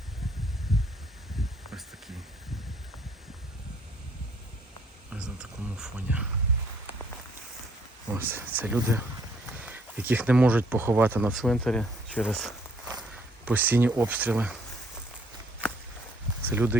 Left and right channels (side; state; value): both; normal; correlation 0.65